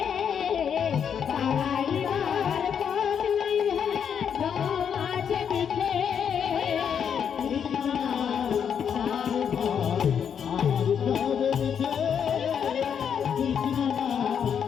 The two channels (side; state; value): right; quieter; 7.8 dB